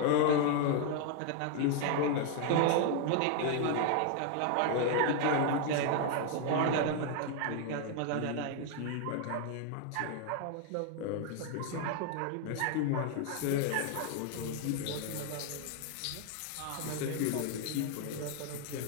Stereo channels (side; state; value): both; different; correlation 0.00